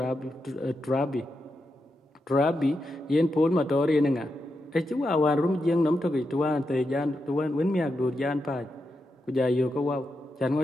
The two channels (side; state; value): both; normal; correlation 0.86